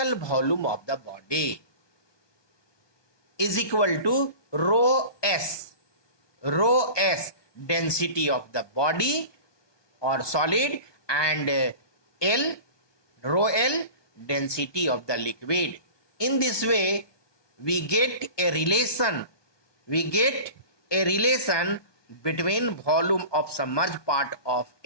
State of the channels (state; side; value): late; right; 1.2 ms